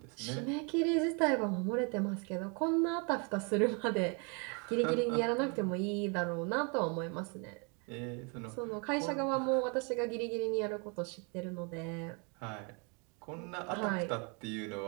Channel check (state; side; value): quieter; left; 34.2 dB